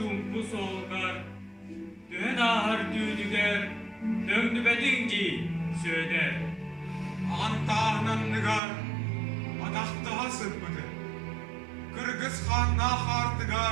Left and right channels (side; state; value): left; drops out; at 8.6 s